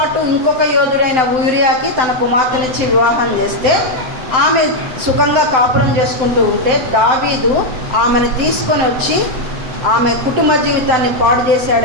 ఇంకొక యోధుడైన ఊరియాకి తన కుమార్తెనిచ్చి వివాహం చేస్తే ఆమె సుఖంగా కాపురం చేసుకుంటూ ఉంటే దావీదు ఆమెను తీసుకొని వచ్చి ఆమె కుటుంబ జీవితాన్ని పాడు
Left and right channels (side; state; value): left; late; 7.8 ms